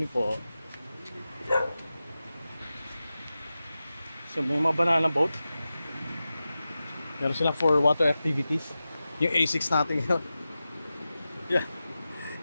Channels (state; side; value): inverted; both; correlation -0.94